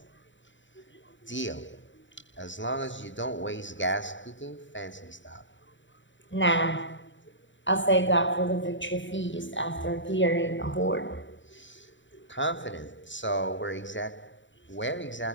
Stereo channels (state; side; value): late; right; 0.54 ms